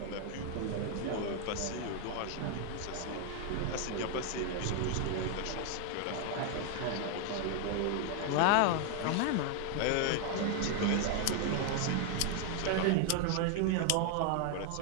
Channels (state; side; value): different; both; correlation 0.00